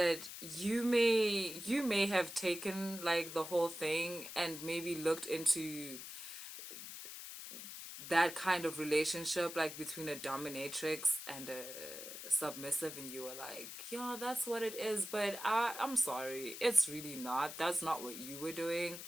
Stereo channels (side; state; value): left; noise; hiss, 10 dB below the sound